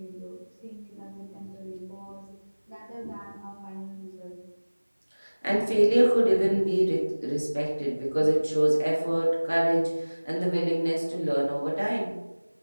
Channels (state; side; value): inverted; both; correlation -1.00